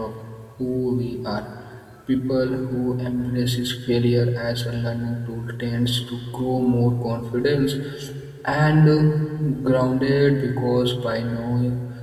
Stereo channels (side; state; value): both; identical; correlation 1.00